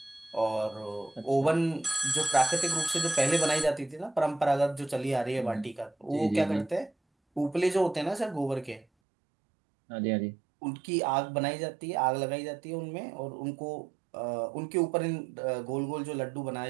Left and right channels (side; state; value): left; drops out; at 8.8 s